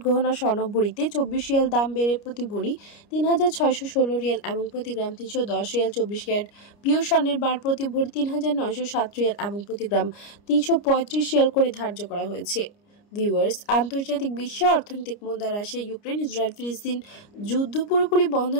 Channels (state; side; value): late; right; 29 ms